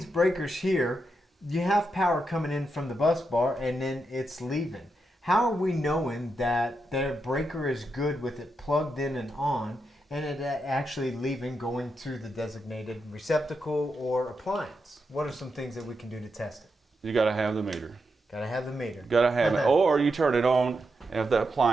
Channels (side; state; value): both; normal; correlation 0.85